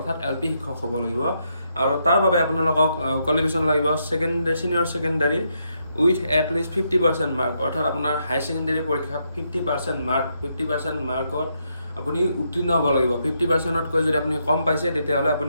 LP শিক্ষক হ'ব লাগিব। আৰু তাৰ বাবে আপোনালোকক কোৱালিফিকেশ্যন লাগিব senior secondary with at least 50% mark, অৰ্থাৎ আপোনাৰ হাই ছেকেণ্ডাৰী পৰীক্ষাত 50% মাৰ্কত আপুনি উত্তীৰ্ণ হ'ব লাগিব। 50%তকৈ যদি আপুনি কম পাইছে, তেতিয়াহ'লে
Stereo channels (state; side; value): inverted; both; correlation -0.79